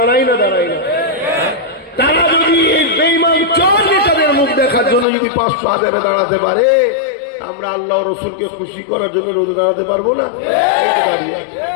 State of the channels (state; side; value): drops out; right; at 5.1 s